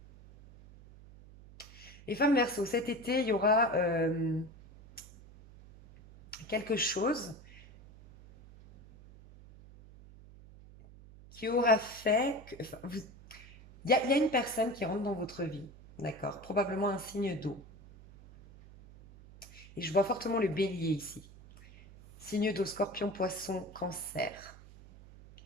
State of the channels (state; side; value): noise; right; hum, 20 dB below the sound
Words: Les femmes verso, cet été, il y aura quelque chose qui aura fait que, enfin, il y a une personne qui rentre dans votre vie, d'accord? Probablement un signe d'eau. Et je vois fortement le bélier ici. Signe d'eau, scorpion, poisson, cancer.